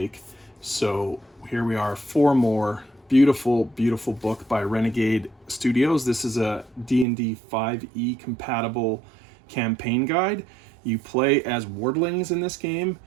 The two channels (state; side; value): drops out; left; at 7.1 s